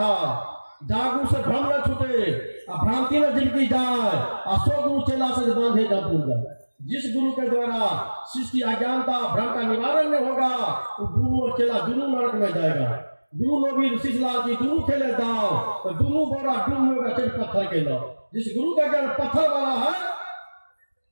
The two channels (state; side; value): inverted; both; correlation -1.00